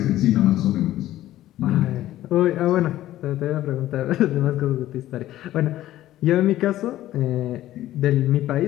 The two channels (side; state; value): right; quieter; 14.2 dB